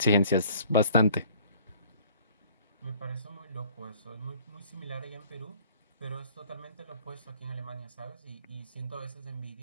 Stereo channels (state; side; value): inverted; both; correlation -0.54